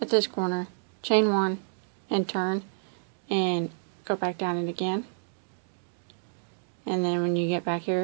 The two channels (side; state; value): left; silent; digital silence